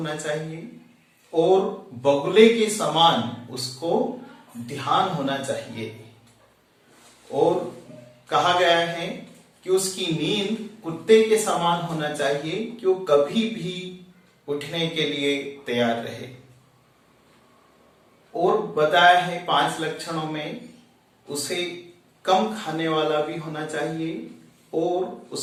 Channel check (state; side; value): identical; both; correlation 1.00